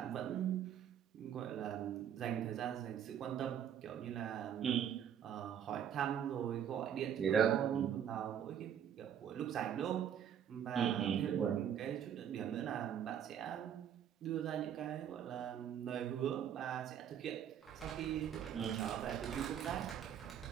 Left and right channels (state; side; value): quieter; left; 9.1 dB